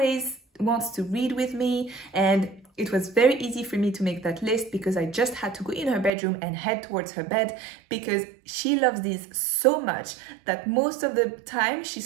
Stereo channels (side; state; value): left; drops out; at 6.1 s